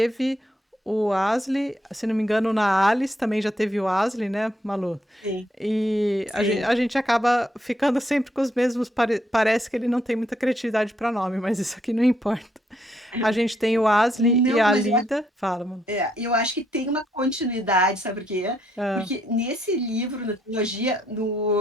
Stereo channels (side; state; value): both; normal; correlation 0.74